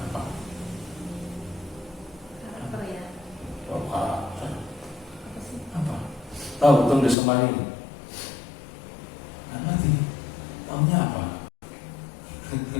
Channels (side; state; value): right; drops out; at 7.2 s